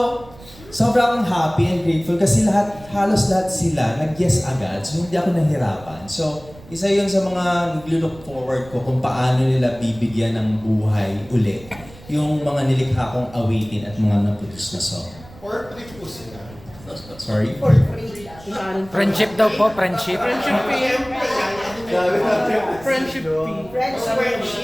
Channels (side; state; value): right; noise; rumble, 20 dB below the sound